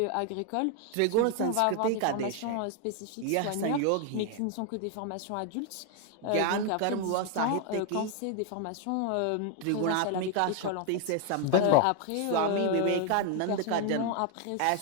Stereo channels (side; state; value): both; different; correlation 0.01